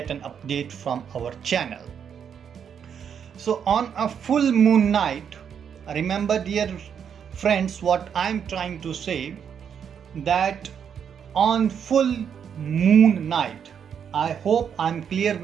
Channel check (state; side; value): quieter; left; 7.8 dB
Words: an update from our channel. So on a full moon night, remember dear friends what I'm trying to say, that on full moon night, I hope I'm clear